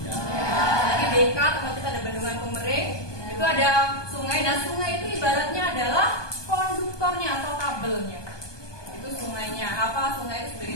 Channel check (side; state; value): right; late; 1.2 ms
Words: Ya. Lagi BK tempat kita ada bendungan Pemering, itu ada sungai. Nah, sungai itu ibaratnya adalah konduktornya atau kabelnya. Itu sungainya. Apa? Sungai itu